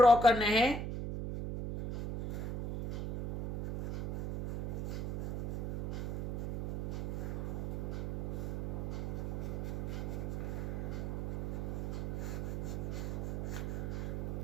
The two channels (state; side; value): noise; right; hum, 1 dB below the sound